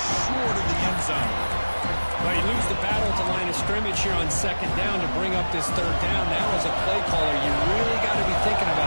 short of the end zone. Well, you lose the battle at the line of scrimmage here on second down to bring up this third down. Now, as a play caller, you really got to be thinking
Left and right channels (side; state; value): both; inverted; correlation -1.00